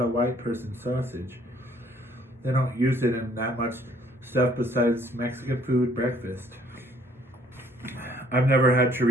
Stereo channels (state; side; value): normal; both; correlation 0.61